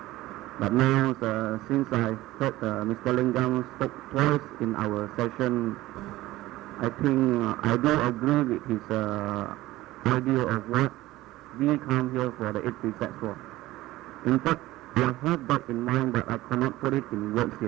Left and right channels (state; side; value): quieter; left; 17.1 dB